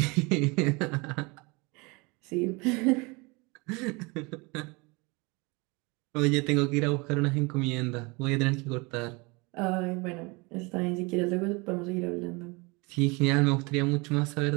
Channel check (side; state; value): left; quieter; 27.3 dB